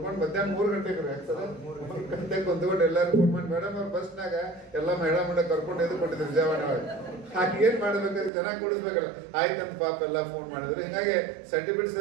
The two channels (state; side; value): drops out; left; at 8.3 s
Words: ಮಧ್ಯಾಹ್ನ 3 ಗಂಟೆಗೆ ಸರ್ 3 ಗಂಟೆಗೆ ಕುಂತ್ಕೊಂಡು ಎಲ್ಲರೂ ಕೂಡ್ಕೊಂಡು ಮೇಡಮ್ ಅವ್ರ ಬಸ್ನಾಗ ಎಲ್ಲ ಮೇಡಮ್ ಕರ್ಕೊಂಡು ಎದ್ದು ಕೊಟ್ಟಿದ್ರು ವಿಜಯವಾಡ ಒಳಗೆ. ಹಾಗೆ ಏನು ಮಾಡ್ಬೇಕಾದ್ರೆ ಚೆನ್ನಾಗಿ ಕೂಡಿಸ್ಬೇಕಲ್ಲ. ಆಯ್ತಂತ ಪಾಪ ಎಲ್ಲ ಫೋನ್ ಮಾಡಿದ್ರು. ಹೀಗಾಗಿ ಸರ್ಟಿಫಿಕೇಟ್